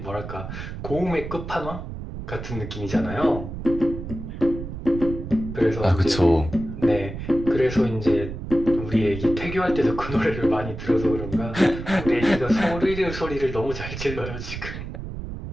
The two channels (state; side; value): noise; right; rumble, 8 dB below the sound